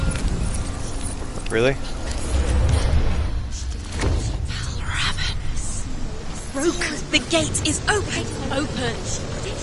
Really? Rook, the gate is open. Open.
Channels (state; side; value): identical; both; correlation 1.00